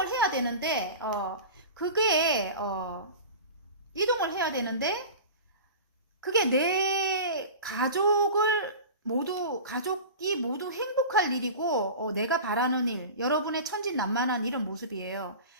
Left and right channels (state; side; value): inverted; both; correlation -0.34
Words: 해야 되는데 그게 이동을 해야 되는데 그게 내 가족이 모두 행복할 일이고, 내가 바라는 일, 여러분의 천진난만한 이런 모습이에요.